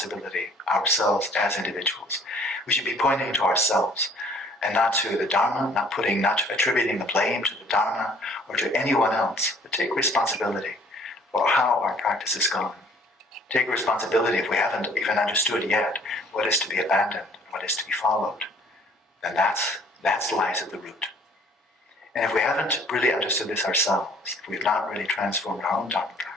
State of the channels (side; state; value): both; normal; correlation 0.57